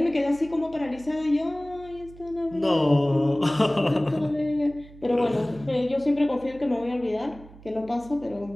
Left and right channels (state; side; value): noise; right; hum, 20 dB below the sound